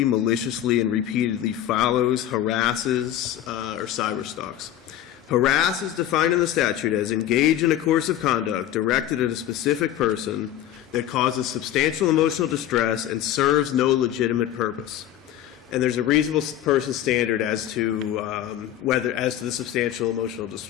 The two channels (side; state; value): right; quieter; 11.8 dB